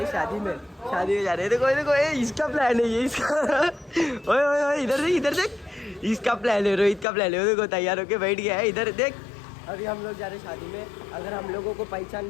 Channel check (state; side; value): drops out; right; at 7.1 s